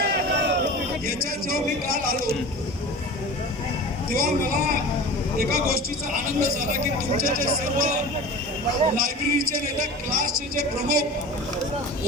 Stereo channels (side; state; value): both; normal; correlation 0.35